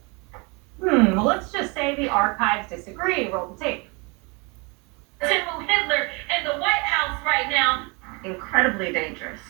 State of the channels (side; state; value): left; quieter; 29.6 dB